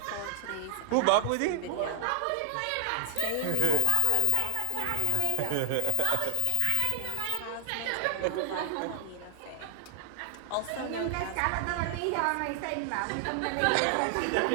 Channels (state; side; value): different; both; correlation 0.00